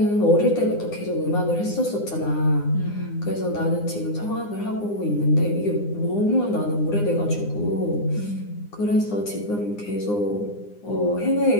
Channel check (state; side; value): late; right; 9.8 ms